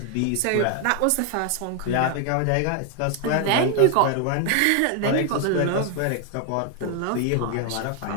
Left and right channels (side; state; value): both; different; correlation 0.00